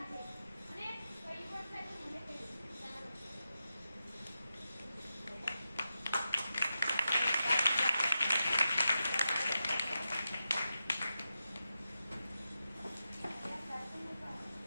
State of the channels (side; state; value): both; inverted; correlation -0.89